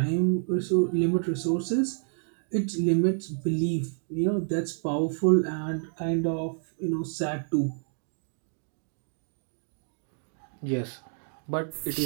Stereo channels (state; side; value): silent; left; digital silence